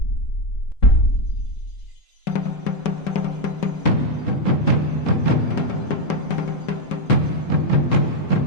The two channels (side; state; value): right; late; 3.7 ms